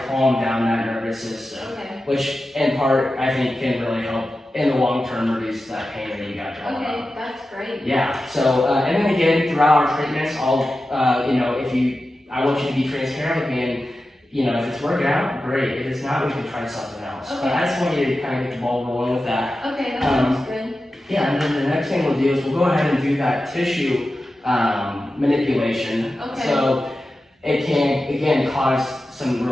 down that nervous system, which in part I think can really help in the long term reduce that pain that you got going on. Okay, that's great. Yeah. So and then again, throughout our treatments, I want you to be transparent with me, and if it's working out, great. If it's not, we can try something else. Okay. But I just want you to kind of get the ball rolling with that. Okay, that sounds good. Yeah, and then the next thing we'll do is we'll go ahead and do that tissue manipulation. Okay. So it can, again, cause some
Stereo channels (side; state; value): both; normal; correlation 0.93